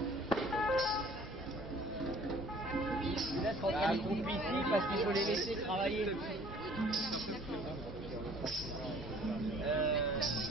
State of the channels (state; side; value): normal; both; correlation 0.54